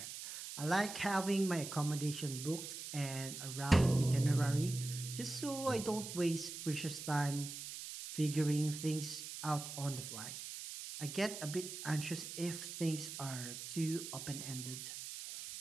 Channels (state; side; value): noise; right; hiss, 8 dB below the sound